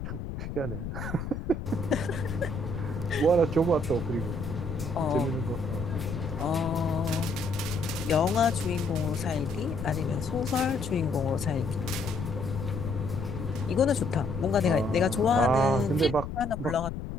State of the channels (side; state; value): left; noise; rumble, 6 dB below the sound